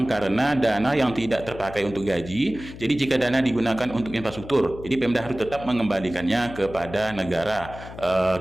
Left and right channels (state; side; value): noise; left; hum, 14 dB below the sound